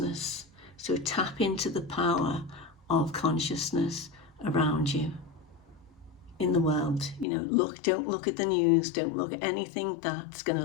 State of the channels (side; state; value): right; drops out; at 7.2 s